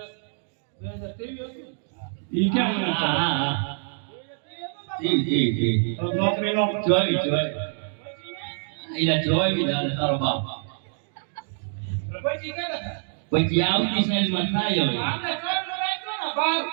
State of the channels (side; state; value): left; silent; digital silence